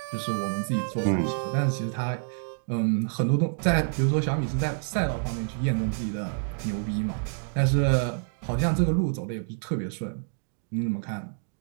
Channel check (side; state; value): left; silent; digital silence